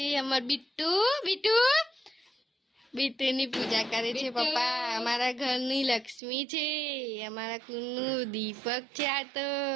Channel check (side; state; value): left; drops out; at 6.2 s